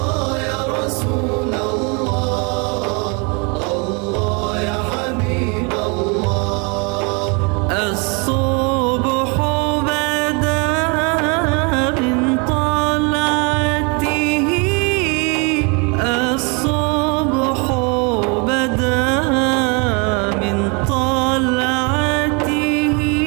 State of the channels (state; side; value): quieter; left; 32.3 dB